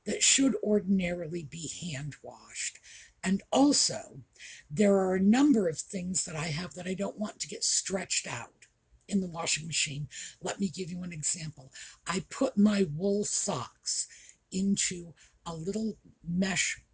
that should ordinarily be hand washed. And also, there are a number of things that I have that I don't want to get stretched out in the washing machine. Let me give you an example. I put my wool socks into a little mesh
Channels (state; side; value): identical; both; correlation 1.00